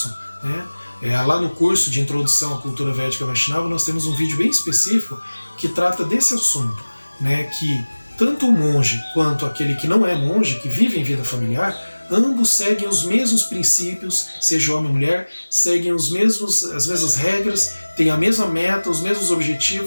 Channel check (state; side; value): inverted; both; correlation -1.00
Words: né? Lá no curso de Introdução à Cultura Védica Vaishnava, nós temos um vídeo bem específico que trata desse assunto, né? Que tanto o monge quanto aquele que não é monge, que vive em vida familiar, ambos seguem os mesmos princípios, seja homem ou mulher, seguem as mesmas regras, têm a mesma meta, os mesmos